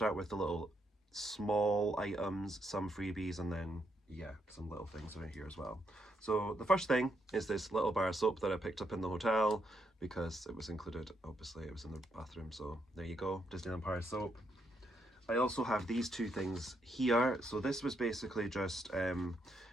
with the little small items, some freebies, and then yeah, some little things around here as well. So the first thing is this little bar of soap that I picked up in the hotel because it was included, obviously it was in the bathroom, so there you go, Disneyland Paris soap. I also have these two things here. So this was basically just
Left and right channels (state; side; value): normal; both; correlation 0.78